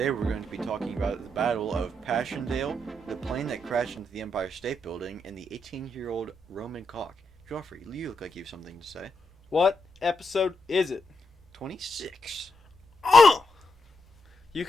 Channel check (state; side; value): normal; both; correlation 0.82